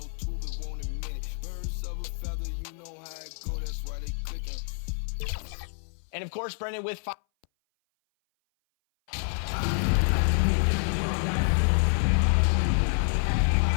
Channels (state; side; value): silent; right; 58 dB below the other